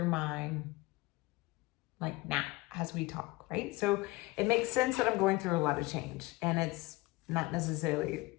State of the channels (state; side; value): quieter; right; 21.9 dB